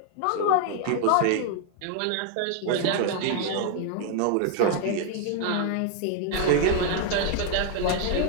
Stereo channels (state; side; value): different; both; correlation 0.00